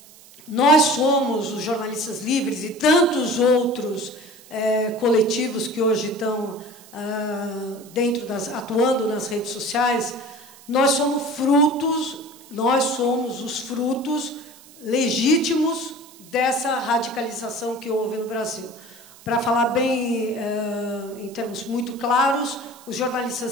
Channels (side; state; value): right; noise; hiss, 22 dB below the sound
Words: Nós somos os jornalistas livres e tantos outros coletivos que hoje estão atuando nas redes sociais, nós somos os frutos legítimos dessa radicalização que houve no Brasil. Para falar bem, em termos muito claros, os